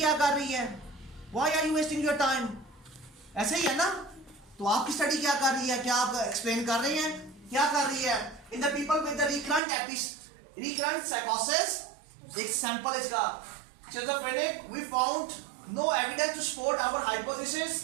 कर रही है, why are you wasting your time, ऐसे ही है ना। तो आपकी स्टडी क्या कर रही है, क्या आप एक्सप्लेन कर रहे हैं, क्या कर रही है। In the people with the recurrent साइकोसिस, एक सैंपल इसका schizophrenic, we found no evidence to support our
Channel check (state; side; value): drops out; left; at 9.6 s